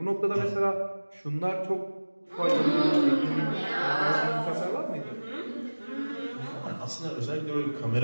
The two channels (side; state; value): both; inverted; correlation -1.00